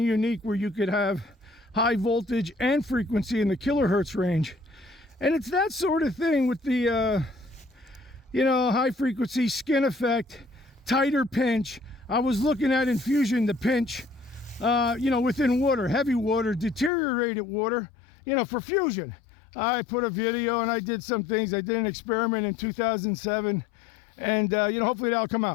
where you could have high voltage and frequency in the kilohertz range. And it's that sort of thing with the, high frequency skin effect, tighter pinch. I was looking at infusion, the pinch, within water, heavy water, deteriorated water, for fusion. I put a video and I did some things. I did an experiment in 2007 and, hopefully that'll come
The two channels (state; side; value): drops out; right; at 16.9 s